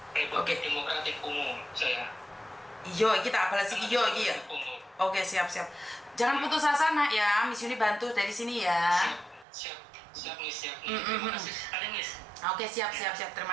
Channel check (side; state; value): left; drops out; at 9.5 s